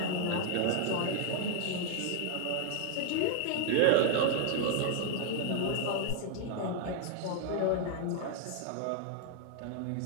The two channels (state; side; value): different; both; correlation 0.00